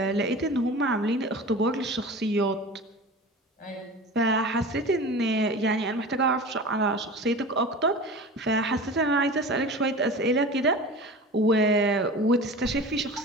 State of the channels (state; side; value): normal; both; correlation 0.35